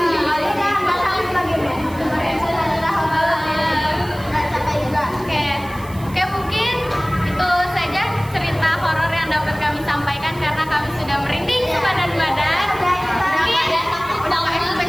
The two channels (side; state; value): right; noise; hiss, 21 dB below the sound